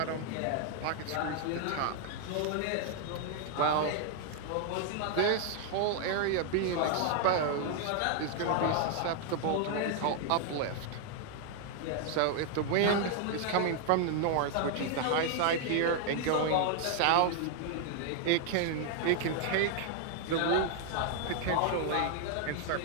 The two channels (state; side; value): different; both; correlation 0.00